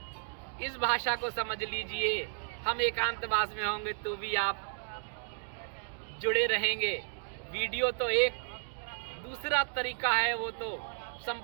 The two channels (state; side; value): silent; left; 56 dB below the other